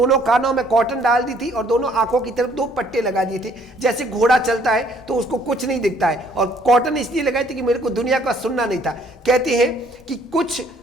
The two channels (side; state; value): both; normal; correlation 0.62